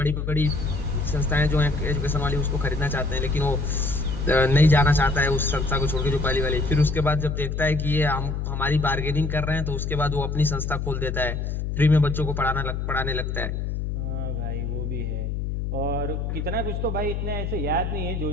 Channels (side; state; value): left; noise; hum, 2 dB below the sound